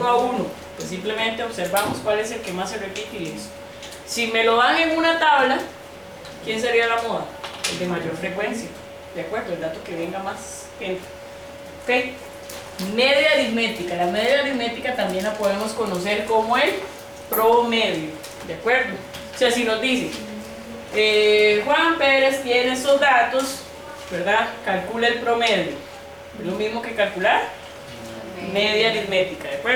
a uno, pues simplemente observamos cuál es el que más se repite y listo. Si me lo dan en una tabla, ¿quién sería la moda? El de mayor frecuencia, ¿de acuerdo? El dato que venga más gente. ¿Ok? Media aritmética. La media aritmética también la podemos conocer como el promedio, ¿de acuerdo? O sea, si nos dice Juan Pérez tiene esos datos, ¿verdad? Calcula el promedio. Es lo mismo que calcular media aritmética, ¿de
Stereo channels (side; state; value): both; identical; correlation 1.00